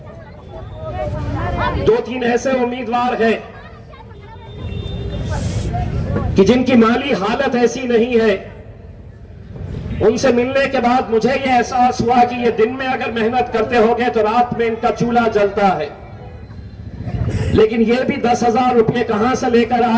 2-3 ऐसे उम्मीदवार हैं कि जिनकी माली हालत ऐसी नहीं है। उनसे मिलने के बाद मुझे यह एहसास हुआ कि ये दिन में अगर मेहनत करते होंगे तो रात में इनका चूल्हा जलता है। लेकिन ये भी 10,000 रुपये कहां से लेकर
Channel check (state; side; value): identical; both; correlation 1.00